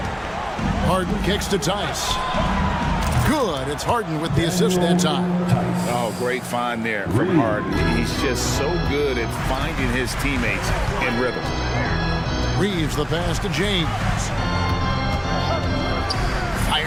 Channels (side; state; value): both; identical; correlation 1.00